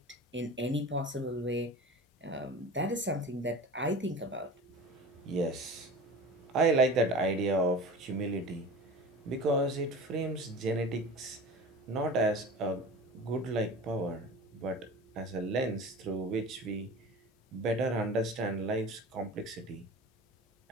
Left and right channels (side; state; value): both; normal; correlation 0.35